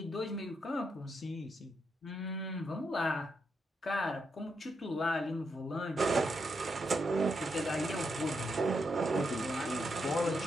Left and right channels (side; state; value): both; normal; correlation 0.81